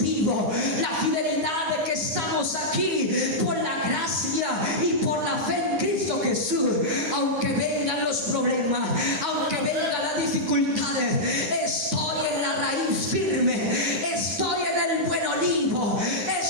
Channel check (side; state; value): left; late; 9.4 ms